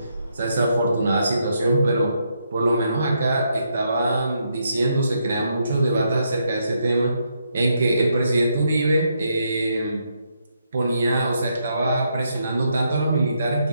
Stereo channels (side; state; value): both; inverted; correlation -0.78